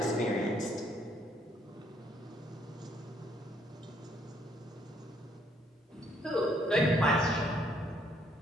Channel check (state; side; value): normal; both; correlation 0.68